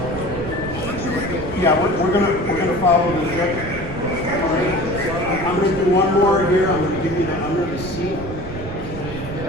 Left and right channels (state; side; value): noise; right; rumble, 10 dB below the sound